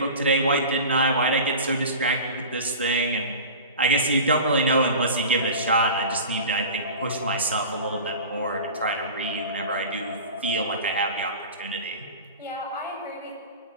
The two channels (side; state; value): both; inverted; correlation -0.34